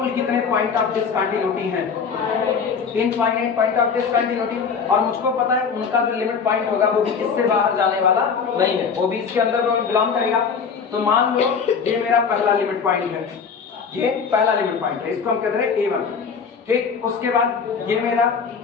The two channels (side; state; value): right; quieter; 6.0 dB